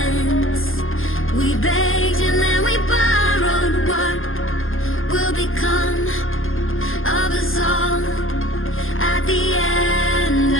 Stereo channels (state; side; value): late; right; 0.60 ms